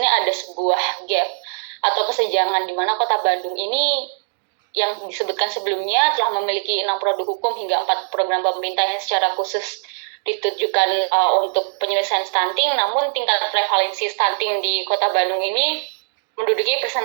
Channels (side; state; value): left; silent; digital silence